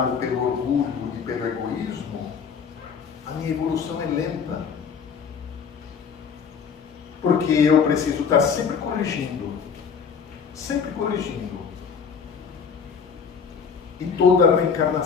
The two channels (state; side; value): quieter; right; 6.3 dB